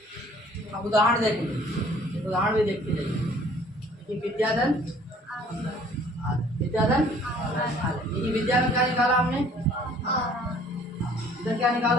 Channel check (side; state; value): both; normal; correlation 0.55